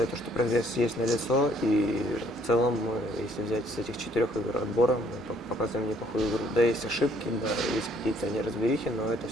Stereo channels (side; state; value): both; normal; correlation 0.63